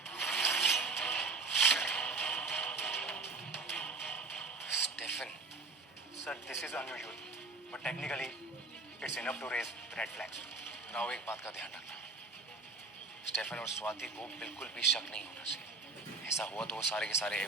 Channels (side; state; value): left; quieter; 3.9 dB